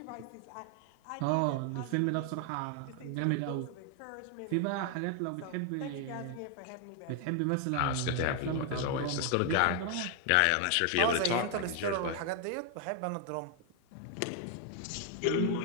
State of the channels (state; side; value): different; both; correlation 0.01